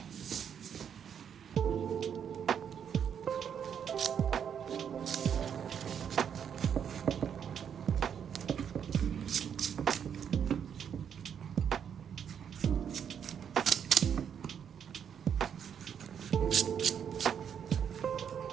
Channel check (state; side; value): quieter; left; 8.1 dB